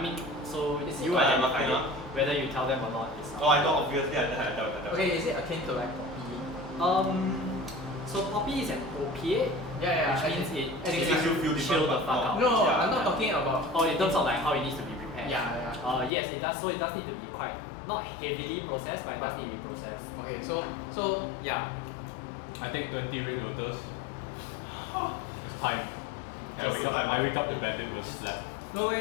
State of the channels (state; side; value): drops out; right; at 16.1 s